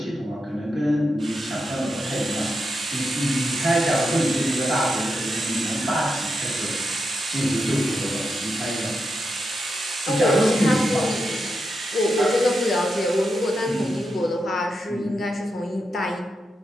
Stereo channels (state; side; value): normal; both; correlation 0.86